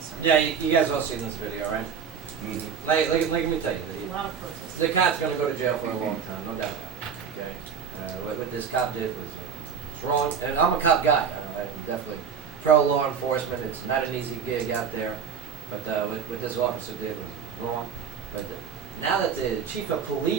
Yeah, you guys all seen this video, right? Mm-hmm. Like, let me tell you, A lot of protests. the cop's going to go to jail for a long time, no doubt about it. Okay, what this cop did was wrong, and I'm a cop guy. I definitely pro law enforcement. It's not an easy gig out there, but what this officer did was wrong. But now that the chief of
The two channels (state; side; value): quieter; left; 6.7 dB